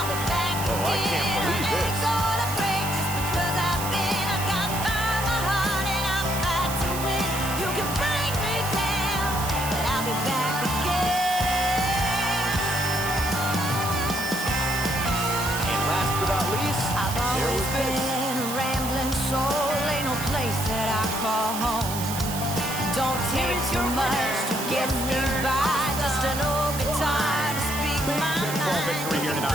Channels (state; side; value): noise; right; hiss, 7 dB below the sound